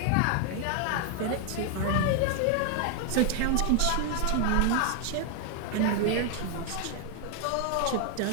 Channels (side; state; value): both; different; correlation 0.00